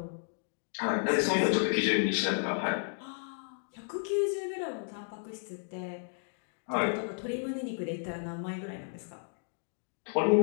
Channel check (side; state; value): right; silent; digital silence